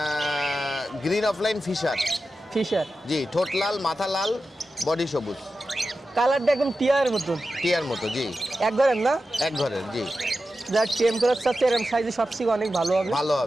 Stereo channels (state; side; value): normal; both; correlation 0.92